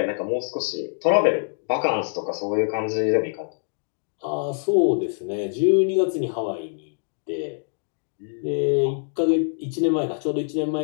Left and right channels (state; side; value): silent; right; digital silence